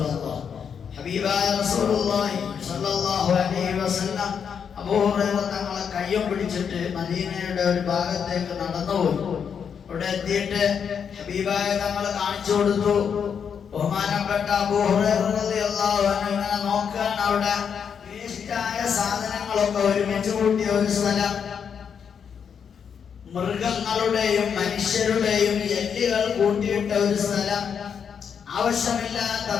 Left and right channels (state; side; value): quieter; right; 7.2 dB